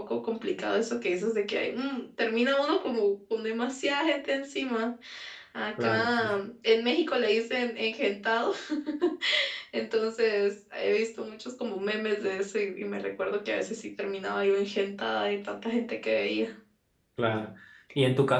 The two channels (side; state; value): both; identical; correlation 1.00